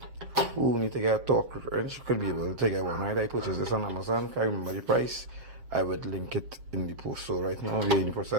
who need to get a torque wrench could be able to get one. Right, I purchased this on Amazon. Can't remember the price. I would link it in the post. So right now we're in the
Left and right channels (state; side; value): late; left; 7.6 ms